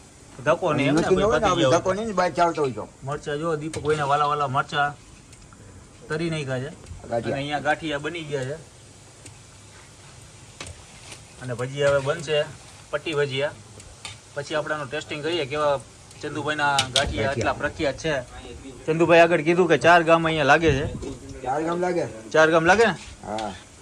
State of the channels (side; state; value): both; identical; correlation 1.00